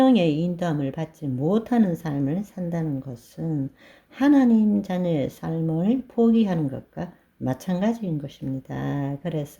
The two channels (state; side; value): identical; both; correlation 1.00